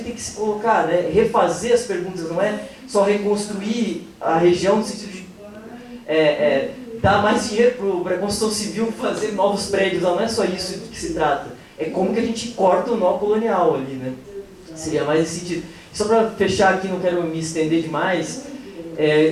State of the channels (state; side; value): identical; both; correlation 1.00